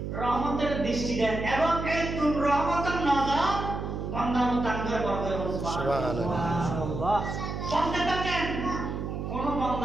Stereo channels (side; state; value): right; noise; hum, 5 dB below the sound